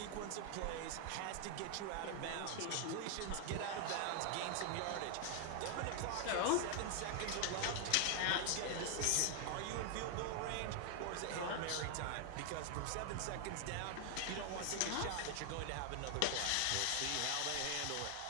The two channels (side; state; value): both; different; correlation 0.00